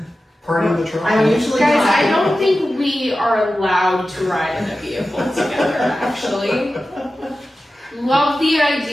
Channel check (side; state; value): both; normal; correlation 0.94